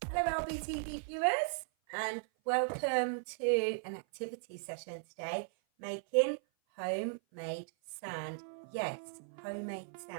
Hello AlbyTV viewers, and welcome to an activity session today, making homemade sand. Yes, homemade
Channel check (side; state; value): left; silent; 53 dB below the other